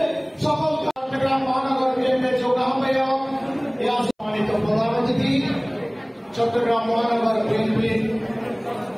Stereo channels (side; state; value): both; identical; correlation 1.00